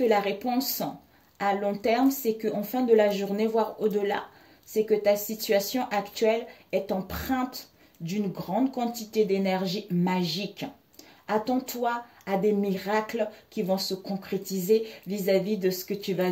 la réponse à long terme, c'est qu'en fin de la journée, voire au-delà, c'est que ta situation actuelle est empreinte d'une grande quantité d'énergie magique. Attends-toi à des miracles qui vont se concrétiser vis-à-vis de ce que tu vas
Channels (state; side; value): identical; both; correlation 1.00